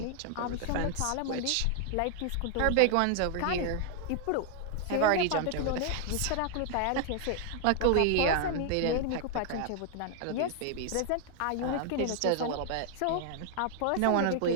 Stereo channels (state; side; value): different; both; correlation 0.00